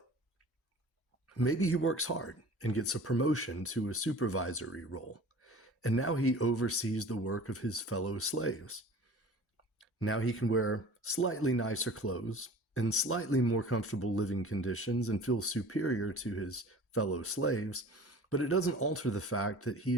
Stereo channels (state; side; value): normal; both; correlation 0.42